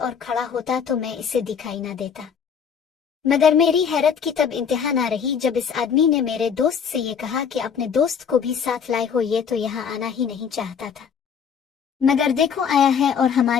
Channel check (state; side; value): quieter; right; 7.0 dB